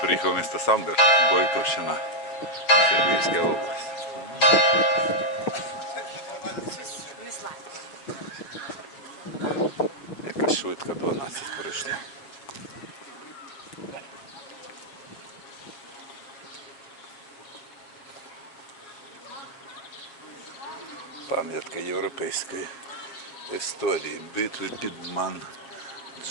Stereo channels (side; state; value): right; late; 7.2 ms